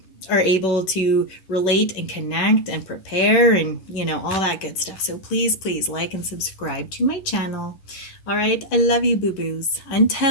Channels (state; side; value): late; right; 10 ms